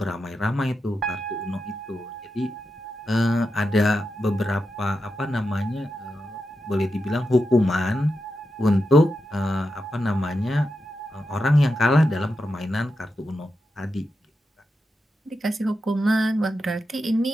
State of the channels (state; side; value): normal; both; correlation 0.88